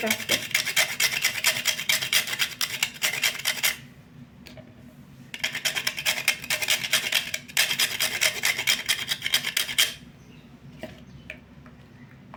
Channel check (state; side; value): identical; both; correlation 1.00